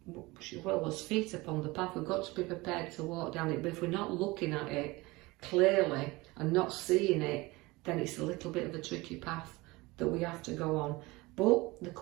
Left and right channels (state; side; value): quieter; left; 22.1 dB